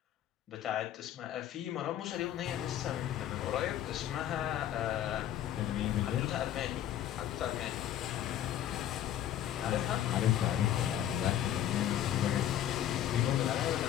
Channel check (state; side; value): quieter; right; 11.3 dB